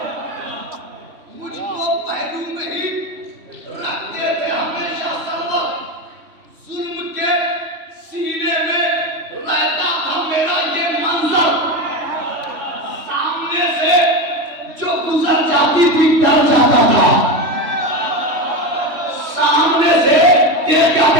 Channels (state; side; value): late; left; 3.1 ms